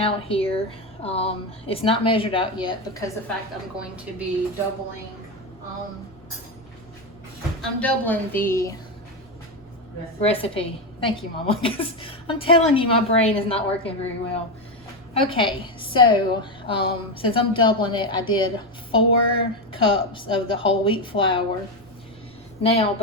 here. It's not measured out yet because the fact I'm going to be doubling, I'm doubling the recipe. Thank you, Mama, because I'm telling you, my brain is not working very well. Okay, so since I'm doubling it, I did 4 cups of the whole wheat flour. Now,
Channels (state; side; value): normal; both; correlation 0.11